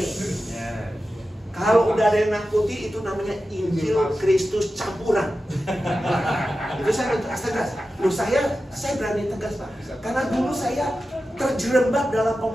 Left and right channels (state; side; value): normal; both; correlation 0.93